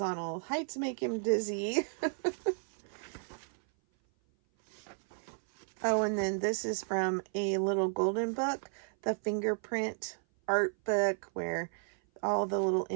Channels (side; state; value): left; silent; 55 dB below the other